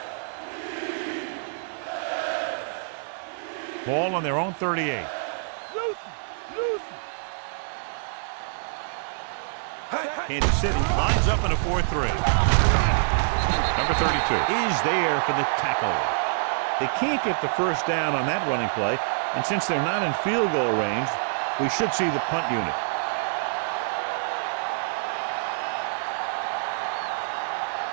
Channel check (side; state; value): left; silent; digital silence